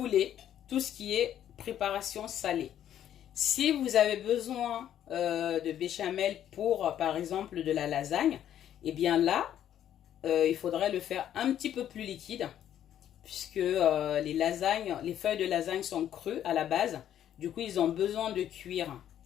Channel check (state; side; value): quieter; right; 10.7 dB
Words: Tout ce qui est préparation salée. Si vous avez besoin de béchamel pour, par exemple, de la lasagne, et bien là, il faudrait le faire un petit peu plus liquide. Puisque les feuilles de lasagne sont crues à la base. Du coup, ils ont besoin de cuire.